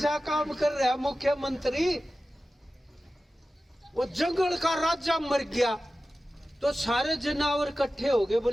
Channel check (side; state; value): both; normal; correlation 0.95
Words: काम कर रहा है मुख्यमंत्री। वो जंगल का राजा मर गया तो सारे जानवर इकट्ठे हो गए,